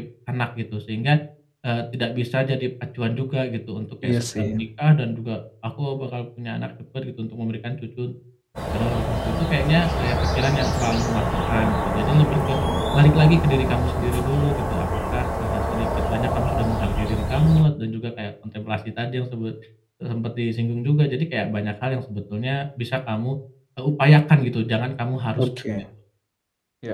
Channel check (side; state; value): both; identical; correlation 1.00